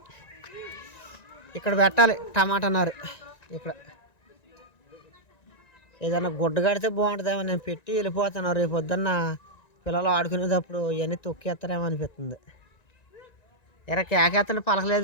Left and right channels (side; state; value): right; late; 1.9 ms